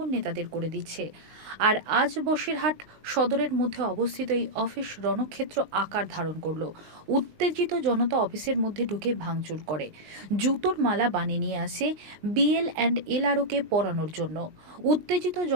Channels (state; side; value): late; left; 19 ms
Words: নেতাদের করে দিচ্ছে। আর আজ বসিরহাট সদরের মধ্যে অবস্থিত এই অফিস রণক্ষেত্র আকার ধারণ করল। উত্তেজিত জনতা অফিসের মধ্যে ঢুকে ভাঙচুর করে, জুতোর মালা বানিয়ে নিয়ে আসে বিএল অ্যান্ড এলআরওকে পরানোর জন্য। উত্তেজিত